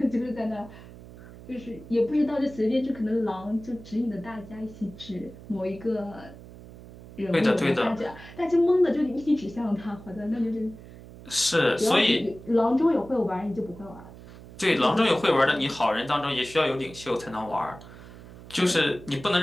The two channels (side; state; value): right; noise; hum, 17 dB below the sound